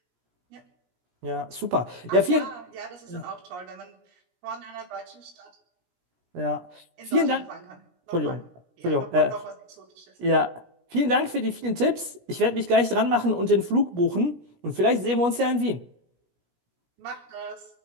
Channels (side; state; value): left; late; 17 ms